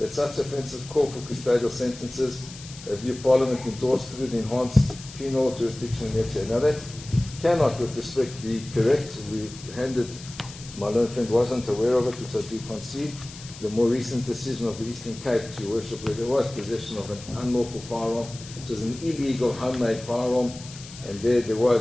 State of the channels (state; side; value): noise; left; hiss, 16 dB below the sound